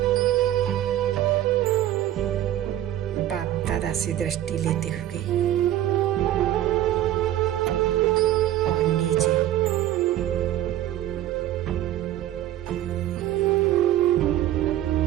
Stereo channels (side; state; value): left; quieter; 13.0 dB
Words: बाप दादा से दृष्टि लेते हुए और नीचे